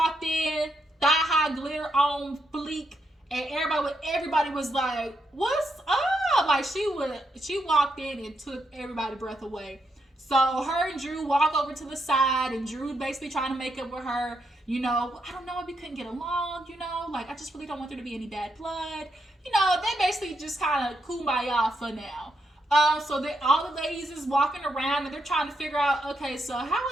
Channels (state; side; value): normal; both; correlation 0.80